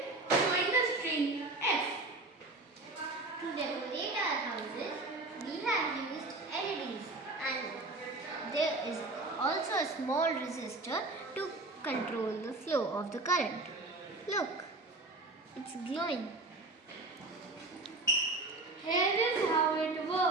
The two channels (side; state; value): left; quieter; 3.1 dB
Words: showing the string F. To decorate our houses, we have used LEDs and there is also a small resistor to control the flow of the current. Look, it's glowing. Here is how it